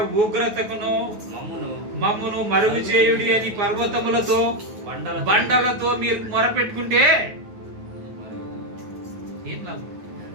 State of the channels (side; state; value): left; late; 9.3 ms